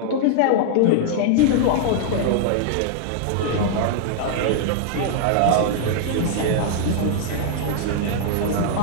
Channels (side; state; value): both; different; correlation -0.01